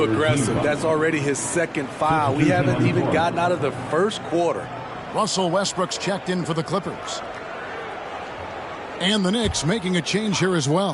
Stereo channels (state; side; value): identical; both; correlation 1.00